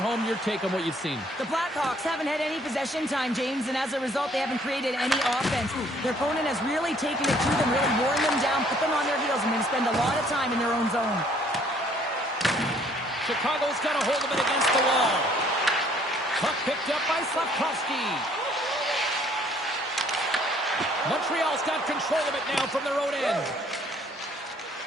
your take on what you've seen. The Blackhawks haven't had any possession time, James, and as a result, they haven't created any offense. Their opponent has really taken it to them, really worn them down, put them on their heels, and then spend a lot of time in their own zone. Chicago's got a hold of it against the wall. Puck picked up by Slavkovsky. Montreal's got control of it now from their own end.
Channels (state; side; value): normal; both; correlation 0.61